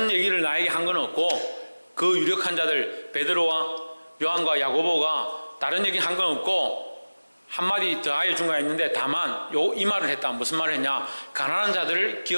얘기를 나에게 한 건 없고, 그 유력한 자들 베드로와 요한과 야고보가 다른 얘기 한 건 없고 한마디 더하여 준 거 있는데, 다만 이 말을 했다. 무슨 말을 했냐? 가난한 자들을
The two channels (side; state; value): both; inverted; correlation -1.00